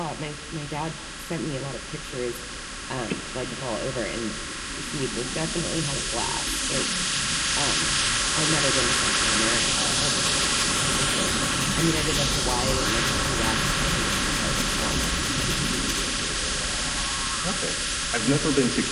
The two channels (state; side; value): identical; both; correlation 1.00